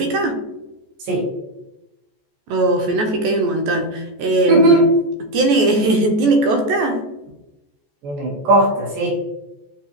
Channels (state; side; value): late; left; 14 ms